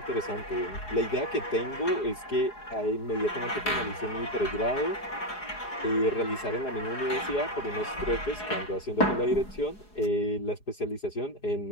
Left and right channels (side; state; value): right; late; 4.8 ms